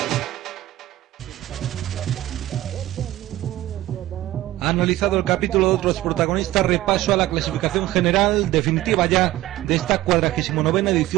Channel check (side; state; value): left; quieter; 15.5 dB